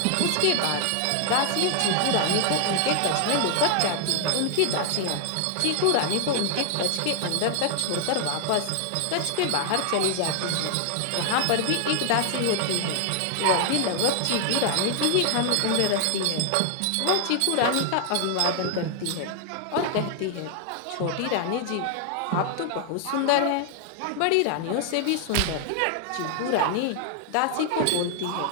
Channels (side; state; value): both; different; correlation 0.00